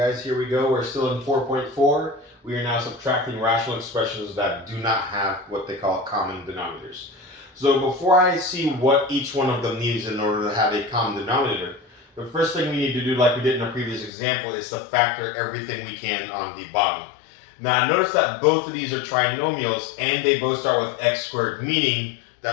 here we go. We're still in 4.4. We are now subtracting rational expressions that do not have what they call common denominators. So before I see what each one of them needs in order to have a common denominator, the first thing we need to do, like we did in the previous example, is to factor everything we can on the bottom. Now notice that both of these are trinomials and they both start with x squared, meaning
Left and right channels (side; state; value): right; drops out; at 14.1 s